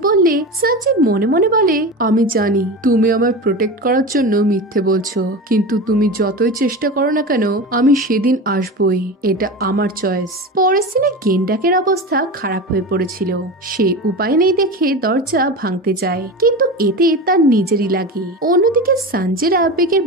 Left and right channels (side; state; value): both; normal; correlation 0.26